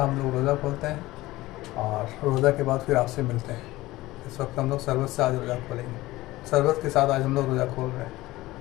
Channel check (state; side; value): quieter; right; 18.2 dB